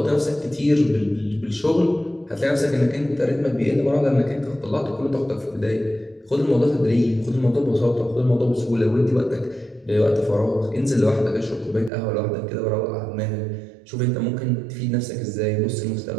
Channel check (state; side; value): drops out; left; at 11.9 s